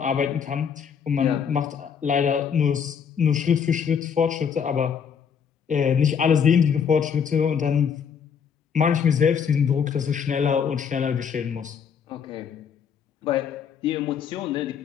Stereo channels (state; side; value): quieter; right; 7.1 dB